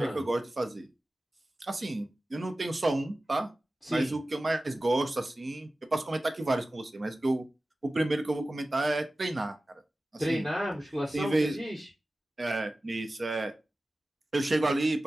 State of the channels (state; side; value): normal; both; correlation 0.96